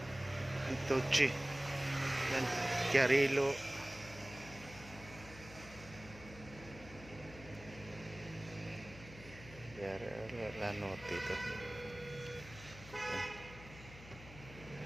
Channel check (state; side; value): noise; left; hum, 16 dB below the sound